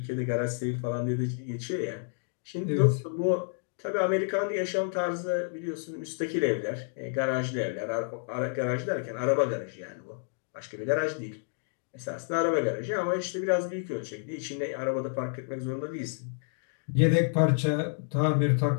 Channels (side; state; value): right; silent; digital silence